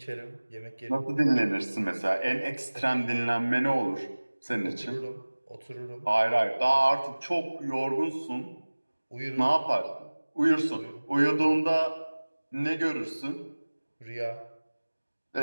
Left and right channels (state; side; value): inverted; both; correlation -1.00